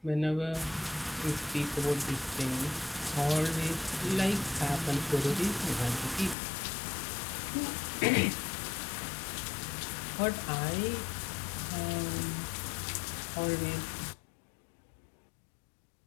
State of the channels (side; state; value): right; drops out; at 6.4 s